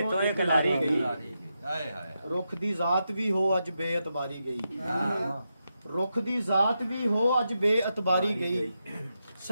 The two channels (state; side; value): inverted; both; correlation -0.86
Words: ਤੋਂ ਇੱਕ ਲਾਰੀ ਗਈ। ਰੁੱਖ ਦੀ ਜ਼ਾਤ ਵੀ ਹੋ ਅੱਜ ਬੇਇਤਬਾਰੀ ਗਈ। ਰੁੱਖ ਦੀ ਜ਼ਾਤ ਵੀ ਹੋ ਅੱਜ ਬੇਇਤਬਾਰੀ ਗਈ।